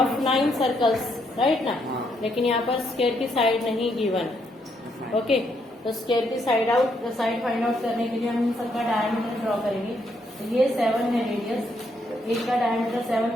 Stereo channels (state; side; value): normal; both; correlation 0.75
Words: 9 circles, right ना। लेकिन यहाँ पर स्क्वायर की साइड नहीं गिवन, ओके। तो स्क्वायर की साइड फाइंड आउट करने के लिए हम इन सबका डायमीटर ड्रॉ करेंगे। तो ये 7 है रेडियस, एक का डायमीटर